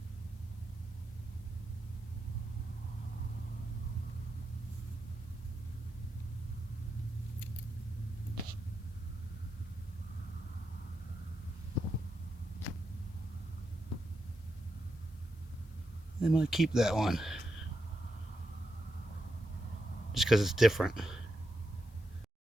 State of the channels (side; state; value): both; normal; correlation 0.85